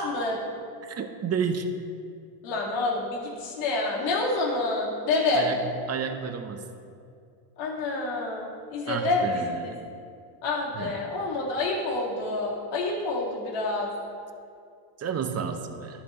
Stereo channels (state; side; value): normal; both; correlation 0.10